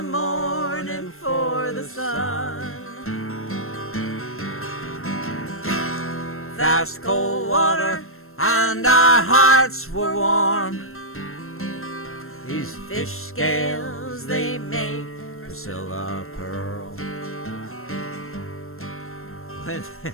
morning for the sun. Fast cold water and our hearts were warm. These fish scales, they make Priscilla pearl.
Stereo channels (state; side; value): late; right; 0.62 ms